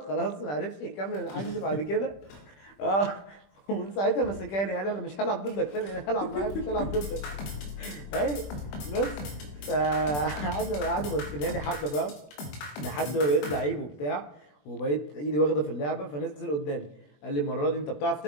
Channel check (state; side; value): late; right; 20 ms